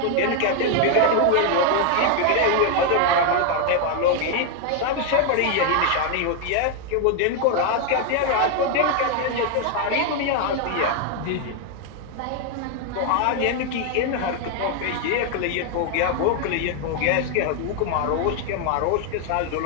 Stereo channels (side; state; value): both; different; correlation 0.01